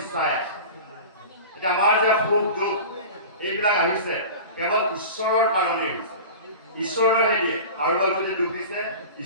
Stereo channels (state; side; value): inverted; both; correlation -0.35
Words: এতিয়া আমাৰ যে সুখ দুখ এইবিলাক আহিছে কেৱল ঈশ্বৰৰ কাৰণেই হৈছে ঈশ্বৰেহে দিয়ে কাৰোবাক যদি দুখ দিছে